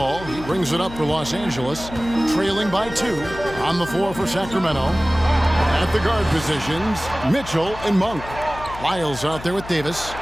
He brings it up for Los Angeles, trailing by 2 on the floor for Sacramento. At the guard positions, Mitchell and Monk. Lyles out there with Davis,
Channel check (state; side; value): noise; left; hum, 13 dB below the sound